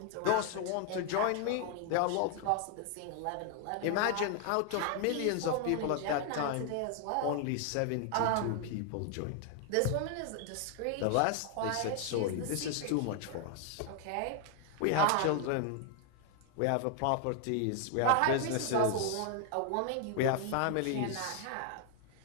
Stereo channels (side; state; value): both; different; correlation 0.00